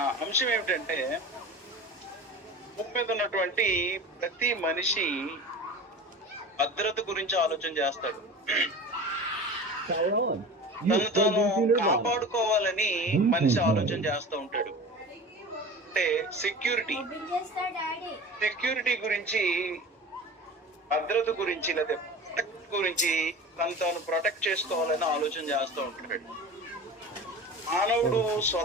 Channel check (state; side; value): normal; both; correlation 0.35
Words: అంశం ఏమిటంటే, భూమి మీద ఉన్నటువంటి ప్రతి మనిషి భద్రత గురించి ఆలోచన చేస్తాడు. తను తాను కాపాడుకోవాలని మనిషి ఆలోచన చేస్తూ ఉంటాడు. అంటే సెక్యూరిటీ గురించి, భద్రత గురించి, లేదా ప్రొటెక్ట్ గురించి తను తాను ప్రొటెక్ట్ చేసుకోవాలని ఆలోచన చేస్తూ ఉంటాడు. మానవుడు